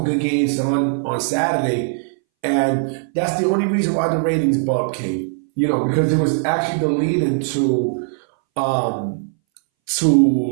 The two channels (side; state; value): left; silent; 64 dB below the other